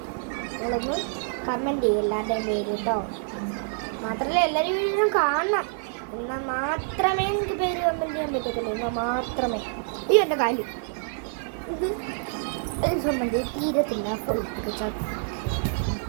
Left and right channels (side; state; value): left; silent; digital silence